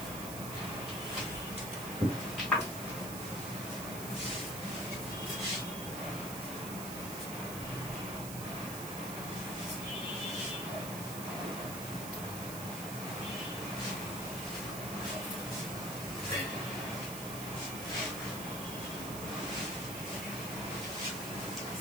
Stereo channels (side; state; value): right; noise; hiss, 7 dB below the sound